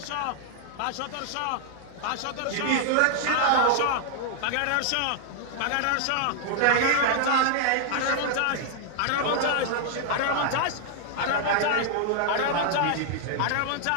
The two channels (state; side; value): different; both; correlation 0.00